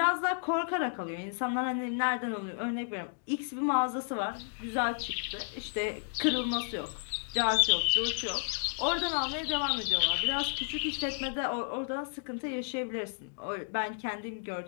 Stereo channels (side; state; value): right; silent; digital silence